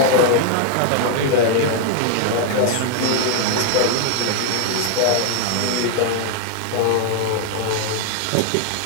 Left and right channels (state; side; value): different; both; correlation 0.00